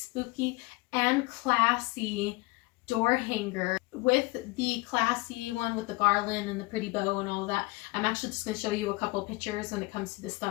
and classy door hanger with the classy one with the garland and the pretty bow and all of that. I'm actually just going to show you a couple of pictures when it comes to the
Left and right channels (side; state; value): right; quieter; 23.6 dB